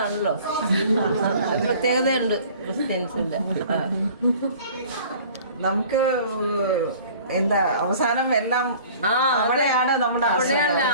പ്രത്യേകതയുണ്ട് ക്രിസ്ത്യൻസിന്റെ. നമുക്ക് എന്താ അവസാനം എല്ലാം അവിടെയാണ് നമ്മുടെ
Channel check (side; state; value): both; inverted; correlation -0.48